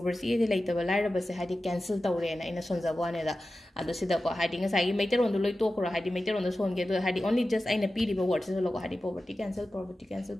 ꯂꯩꯇꯕ ꯂꯥꯏꯔꯕꯁꯦ ꯍꯥꯏꯗꯤ ꯀꯦꯟꯁꯦꯜ ꯇꯧꯔꯦꯅ ꯑꯩꯅ ꯁꯣꯟꯖꯕ ꯋꯥꯅꯦꯗ ꯑꯗꯣ ꯁꯤꯗꯀꯣ ꯍꯥꯏꯗꯤ ꯉꯁꯥꯏꯒꯤ ꯃꯩꯇꯩꯔꯣꯟꯗꯣ ꯂꯣꯏ ꯇꯣꯛꯈ꯭ꯔꯣ ꯍꯥꯏꯗꯤ ꯃꯩꯇꯩꯔꯣꯟꯗ ꯁꯣꯟꯒꯦ ꯑꯗꯣ ꯍꯥꯏꯗꯤ ꯑꯣꯟꯂꯤ ꯖꯁ ꯑꯩꯅ ꯄꯤꯔꯤꯕ ꯋꯥꯔꯗꯁꯤꯁꯨ ꯂꯧꯀꯣ ꯍꯥꯏꯗꯤ poverty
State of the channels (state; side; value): normal; both; correlation 0.94